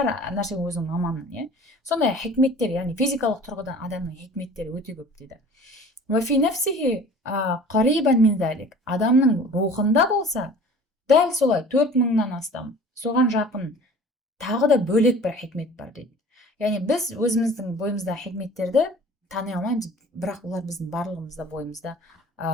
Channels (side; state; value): both; normal; correlation 0.45